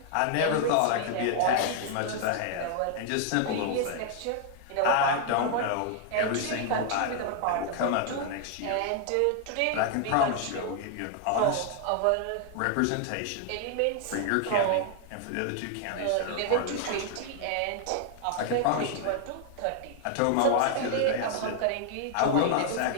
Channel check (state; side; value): different; both; correlation 0.00